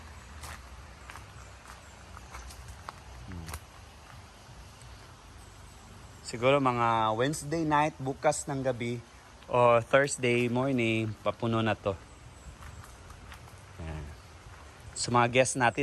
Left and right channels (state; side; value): identical; both; correlation 1.00